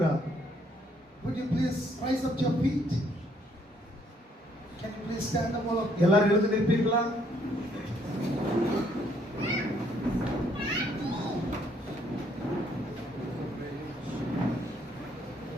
Would you please rise up your feet? Can you please stand up all of you? எல்லாரும் எழுந்து நிற்பீர்களா?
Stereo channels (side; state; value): both; normal; correlation 0.68